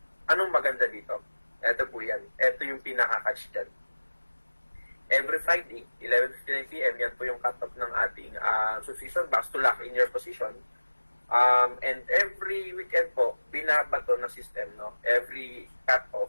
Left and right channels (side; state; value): both; inverted; correlation -1.00